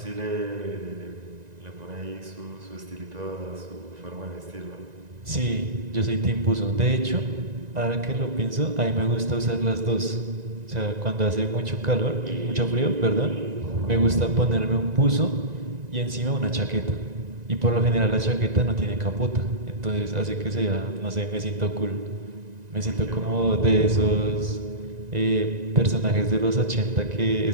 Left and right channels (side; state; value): left; late; 1.9 ms